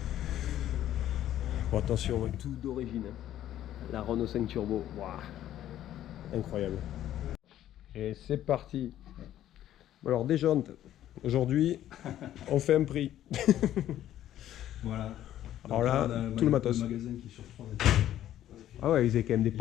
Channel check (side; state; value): right; quieter; 12.2 dB